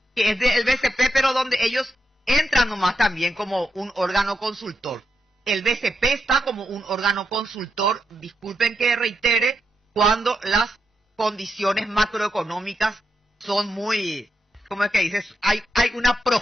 que es del BCP, pero donde ellos entran nomás también como un órgano consultor. El BCP está como un órgano consultor, disculpen que reitere, cuando las condiciones macroeconómicas son muy, ¿cómo es que dices? Hay una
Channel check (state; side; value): normal; both; correlation 0.84